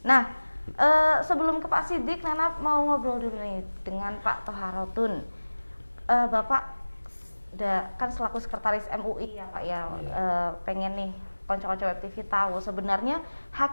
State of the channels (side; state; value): both; inverted; correlation -1.00